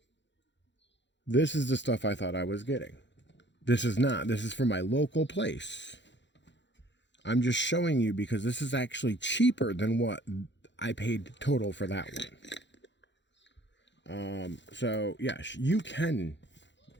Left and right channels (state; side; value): late; right; 0.52 ms